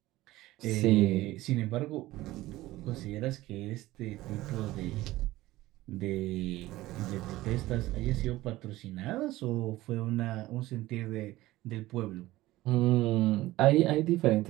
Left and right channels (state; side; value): quieter; left; 17.3 dB